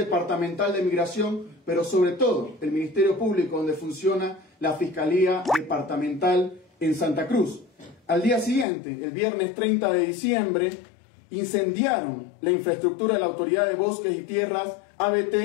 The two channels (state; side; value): drops out; right; at 8.7 s